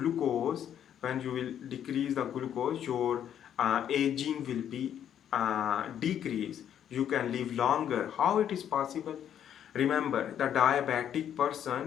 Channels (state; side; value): quieter; right; 9.7 dB